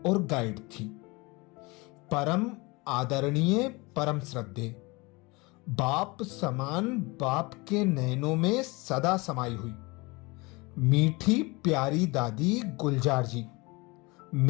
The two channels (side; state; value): right; quieter; 25.2 dB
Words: गाइड थी, परम आदरणीय, परम श्रद्धेय, बाप समान, बाप के नैनों में सदा समाई हुई मीठी प्यारी दादी गुलजार जी